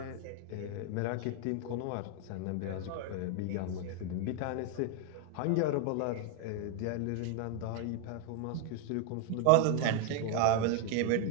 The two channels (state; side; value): different; both; correlation 0.00